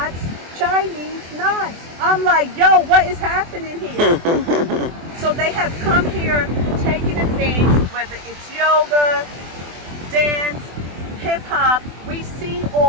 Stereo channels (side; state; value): left; late; 24 ms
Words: Chinese knots. I'm like, yo, what is happening here? So they have come here, taking the things, whether it's yoga, dance, hip hop. We see